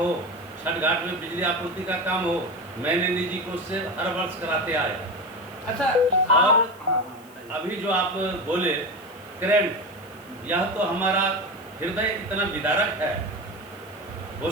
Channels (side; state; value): left; noise; hiss, 25 dB below the sound